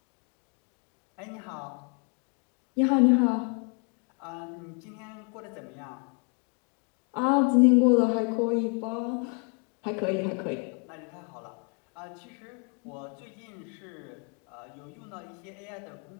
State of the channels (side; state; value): right; quieter; 39.0 dB